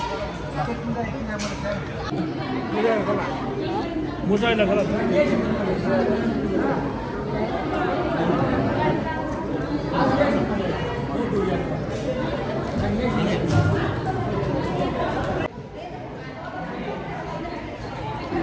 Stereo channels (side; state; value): both; identical; correlation 1.00